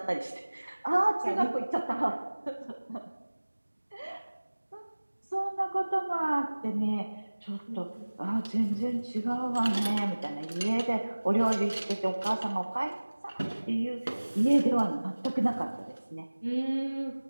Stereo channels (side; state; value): both; inverted; correlation -1.00